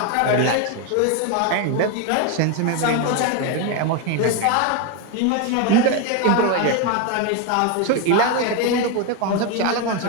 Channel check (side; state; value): both; different; correlation 0.02